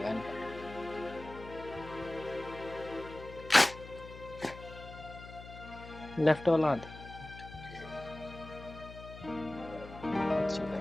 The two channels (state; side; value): noise; left; hum, 14 dB below the sound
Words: इनका। लेफ्ट वाला हाथ